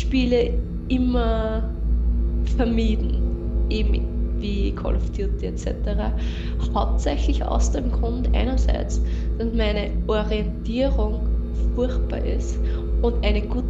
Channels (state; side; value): identical; both; correlation 1.00